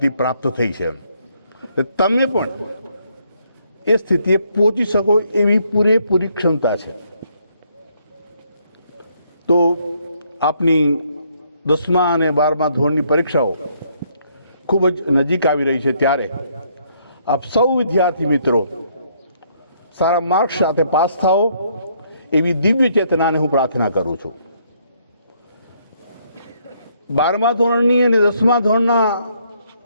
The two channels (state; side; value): inverted; both; correlation -0.70